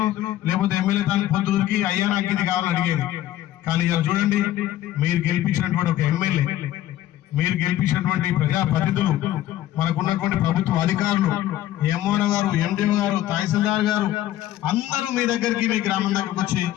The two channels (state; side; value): quieter; right; 13.4 dB